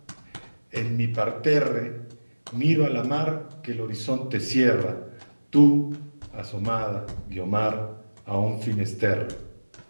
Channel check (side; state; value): both; inverted; correlation -1.00